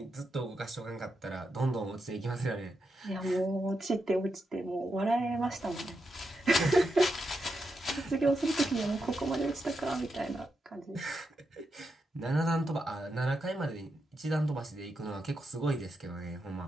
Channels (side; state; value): both; normal; correlation 0.85